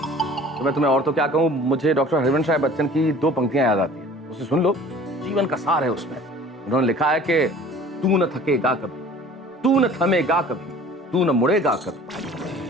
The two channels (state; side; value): normal; both; correlation 0.47